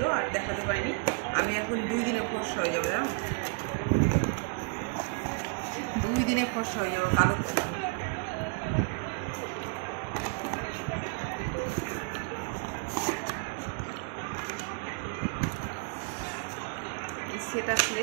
আর দেখাতে পারিনি। আমি এখন 2 দিনে ফর্সা হয়ে যাবো, জানো, 2 দিনে ফর্সা হয়ে যাবো কালো থেকে। সেটা করে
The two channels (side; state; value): left; quieter; 34.3 dB